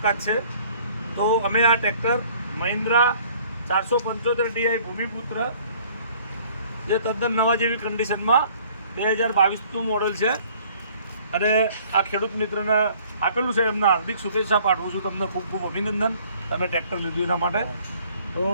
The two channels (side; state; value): both; inverted; correlation -0.56